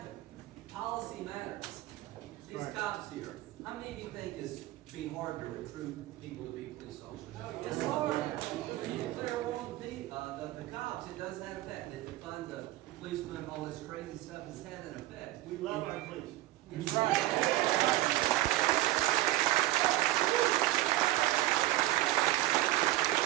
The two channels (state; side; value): quieter; left; 16.7 dB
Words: Policy matters. These cops here, how many of you think it's be hard to recruit people to be police officers? It's hard. When you declare war on the cops, it does have effect. It defund the policemen, all this crazy stuff has had an effect. We love our police. That's right.